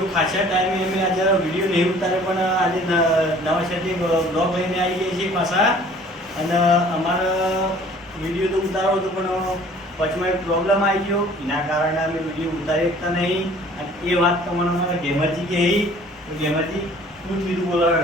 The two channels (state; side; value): normal; both; correlation 0.52